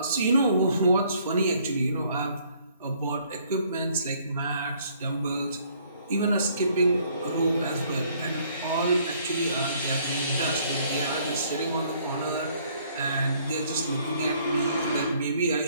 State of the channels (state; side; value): inverted; both; correlation -0.63